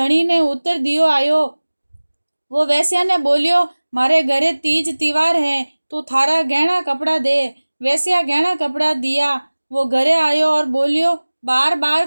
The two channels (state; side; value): inverted; both; correlation -1.00